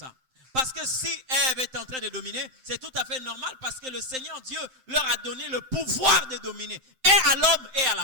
Parce que si Ève est en train de dominer, c'est tout à fait normal parce que le Seigneur Dieu leur a donné le pouvoir de dominer. Et à l'homme et à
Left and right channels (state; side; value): late; left; 7.7 ms